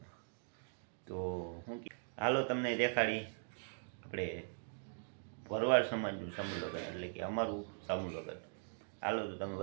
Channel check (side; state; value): left; silent; digital silence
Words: તો હું હાલો તમને દેખાડી આપણે ભરવાડ સમાજનું સમૂહ લગ્ન, એટલે કે અમારું સમૂહ લગ્ન. હાલો તો તમે